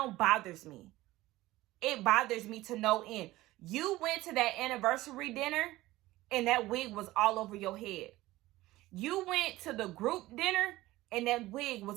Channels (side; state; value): left; quieter; 17.6 dB